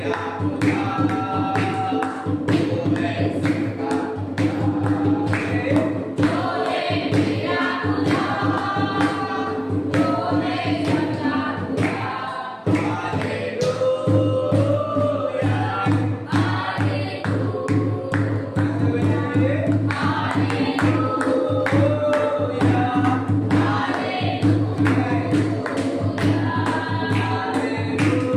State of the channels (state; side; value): identical; both; correlation 1.00